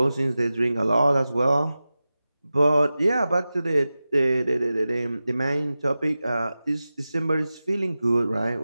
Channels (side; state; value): both; inverted; correlation -0.95